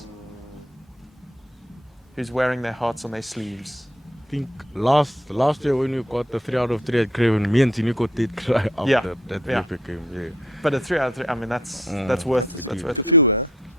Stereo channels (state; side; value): normal; both; correlation 0.64